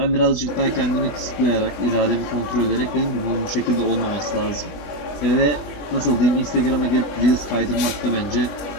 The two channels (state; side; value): late; right; 21 ms